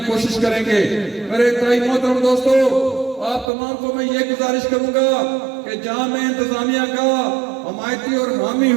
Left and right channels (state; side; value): drops out; left; at 3.5 s